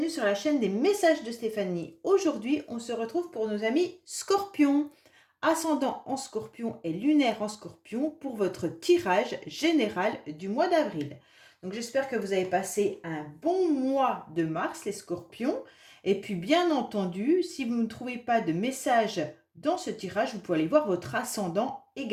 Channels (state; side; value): identical; both; correlation 1.00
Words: la chaîne des messages de Stéphanie. Aujourd'hui, on se retrouve pour nos amis Scorpions, ascendant en Scorpion et lunaire en Scorpion pour votre tirage général du mois d'avril. Donc j'espère que vous avez passé un bon mois de mars, les Scorpions. Et puis bien entendu, si vous ne trouvez pas de message dans ce tirage, vous pouvez aller voir votre ascendant